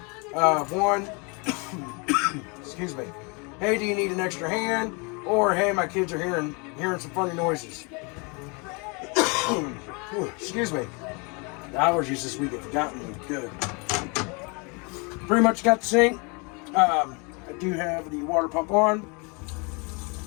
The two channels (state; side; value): quieter; right; 31.5 dB